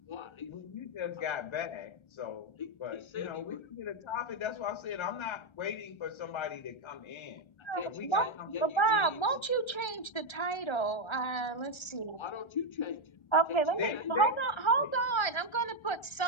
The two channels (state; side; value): late; right; 1.3 ms